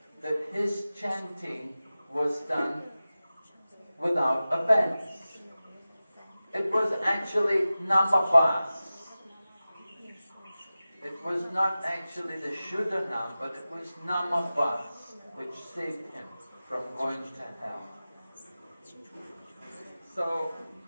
that his chanting was done without offense. It was actually namabhas. It was not actually the Shuddhanam, but it was namabhas which saved him from going to hell. So,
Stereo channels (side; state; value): both; inverted; correlation -0.96